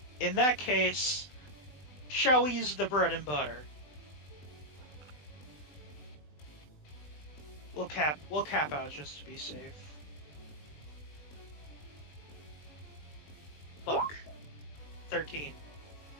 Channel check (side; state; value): right; late; 20 ms